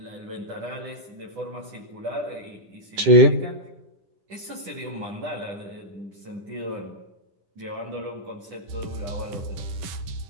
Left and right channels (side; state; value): left; late; 10 ms